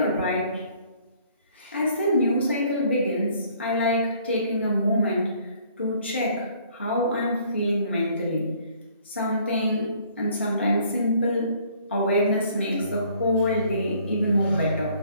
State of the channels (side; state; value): both; inverted; correlation -0.60